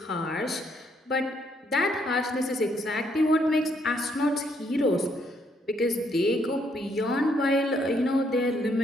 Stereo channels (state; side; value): normal; both; correlation 0.71